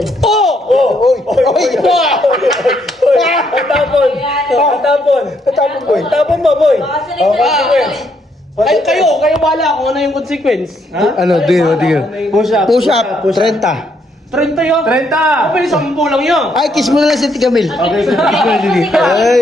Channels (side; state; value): both; normal; correlation 0.73